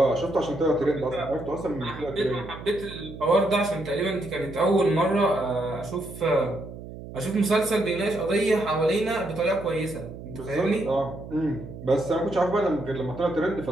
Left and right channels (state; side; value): noise; right; hum, 13 dB below the sound